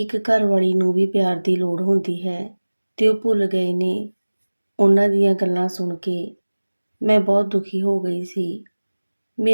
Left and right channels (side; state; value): both; inverted; correlation -1.00